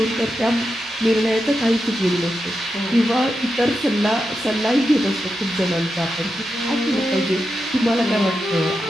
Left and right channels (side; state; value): both; normal; correlation 0.88